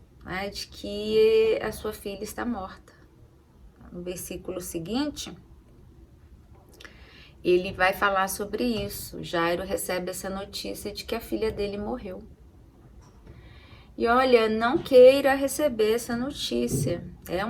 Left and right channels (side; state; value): both; identical; correlation 1.00